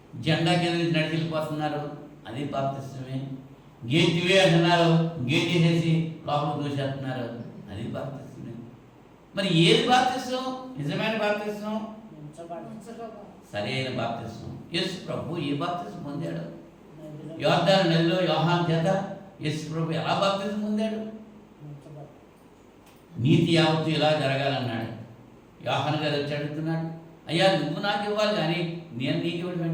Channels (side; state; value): both; identical; correlation 1.00